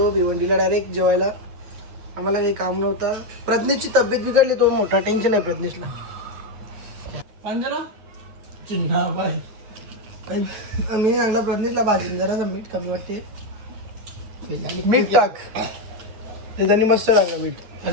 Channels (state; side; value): late; left; 9.2 ms